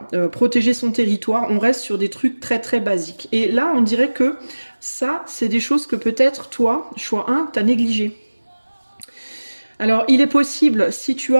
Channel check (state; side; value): inverted; both; correlation -1.00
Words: protéger son territoire, on reste sur des trucs très très basiques. Et là, on dirait que ça, c'est des choses que peut-être toi, choix 1, t'as négligé. Alors, il est possible, si tu